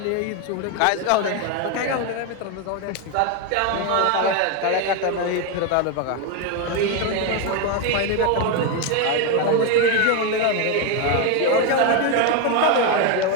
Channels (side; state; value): both; different; correlation 0.02